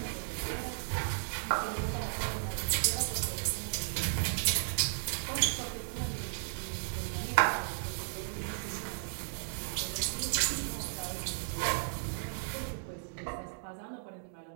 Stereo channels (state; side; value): silent; left; digital silence